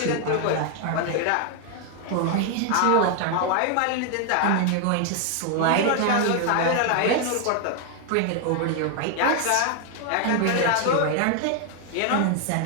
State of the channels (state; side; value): different; both; correlation 0.00